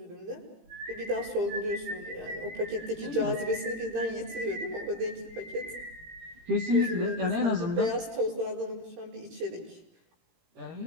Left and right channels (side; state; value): left; late; 18 ms